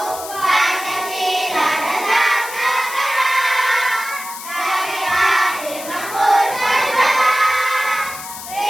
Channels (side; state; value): left; noise; hiss, 11 dB below the sound